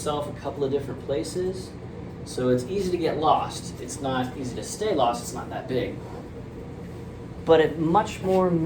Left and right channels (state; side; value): identical; both; correlation 1.00